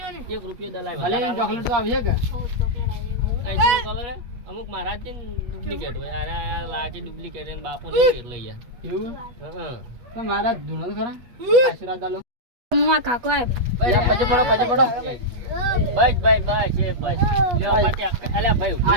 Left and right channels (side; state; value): left; late; 8.1 ms